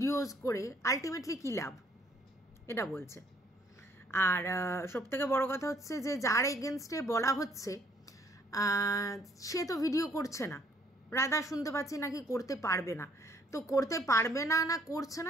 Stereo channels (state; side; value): normal; both; correlation 0.65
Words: করে আলটিমেটলি কী লাভ, এটা বলছে। আর সবথেকে বড় কথা হচ্ছে যে যার এগেনস্টে বলা হচ্ছে সে তো ভিডিও করছে না। রাধা শুনতে পাচ্ছি নাকি করতে পারবে না, তো করতে পারবে না না করছে